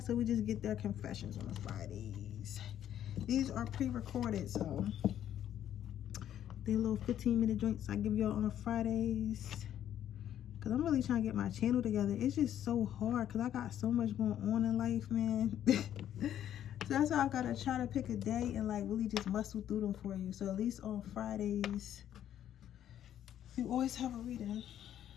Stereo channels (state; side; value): quieter; right; 10.8 dB